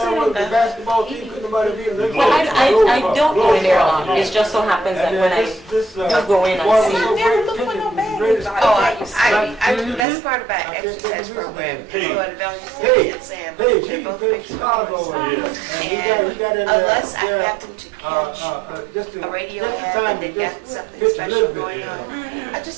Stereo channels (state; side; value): drops out; left; at 10.1 s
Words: basketball team couldn't nobody beat them. Well, I don't go in there a lot. It just so happens that when I do go in, I see. That's part of our exercise program. Hey. Go to Valley Hey, and Sam. hey, They're he both played big Chicago. supporters. And he got in Unless I there, happen to catch just a radio just in ad time and to they've got just something pitch a special little bit, going you know. on, I